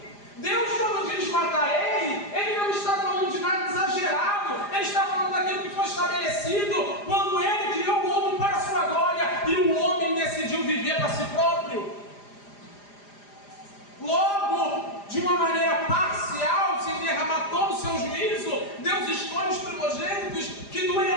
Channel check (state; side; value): late; right; 4.9 ms